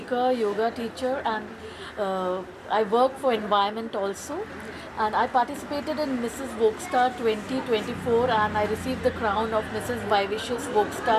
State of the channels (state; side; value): identical; both; correlation 1.00